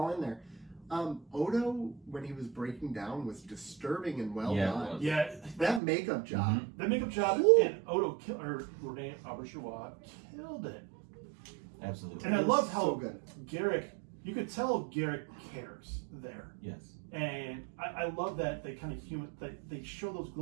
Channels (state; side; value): drops out; left; at 5.8 s